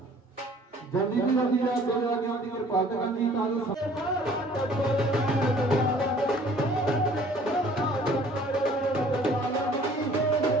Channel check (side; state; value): both; normal; correlation 0.54